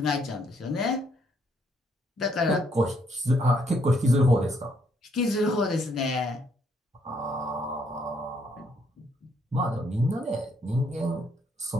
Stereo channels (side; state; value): both; normal; correlation 0.71